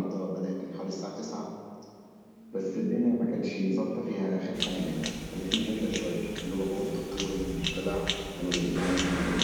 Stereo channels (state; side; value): identical; both; correlation 1.00